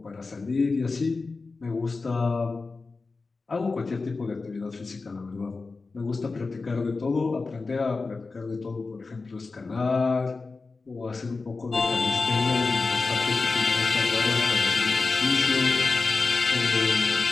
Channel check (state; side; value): quieter; right; 4.0 dB